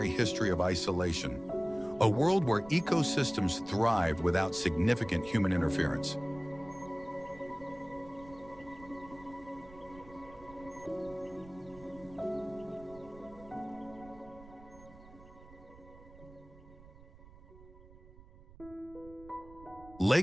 history of isolation, a world where ecosystems thrive without significant human interference.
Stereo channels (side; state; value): right; noise; rumble, 21 dB below the sound